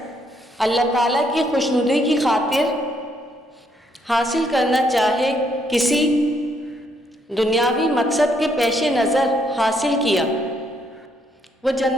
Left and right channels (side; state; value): both; normal; correlation 0.72